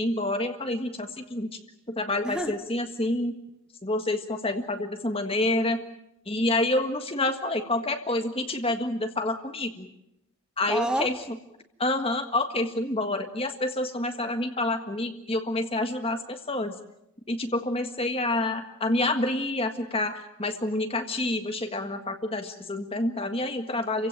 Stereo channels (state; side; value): normal; both; correlation 0.36